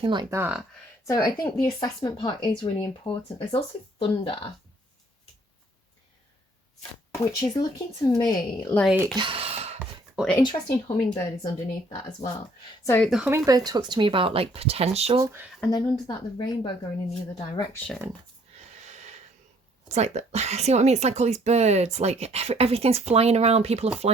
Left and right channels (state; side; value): normal; both; correlation 0.62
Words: like that. So I think the assessment part is really important. There's also thunder, which is looking to me like, well, an interesting hummingbird is underneath that as well. So the hummingbird talks to me about like potential, and then under that, the rainbow going in the other direction. It's like, see what I mean? It's like all these birds, like everything's flying around. People are